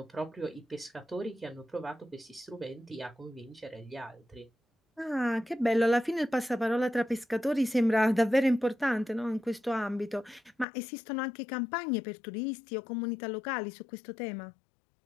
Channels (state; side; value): drops out; right; at 10.7 s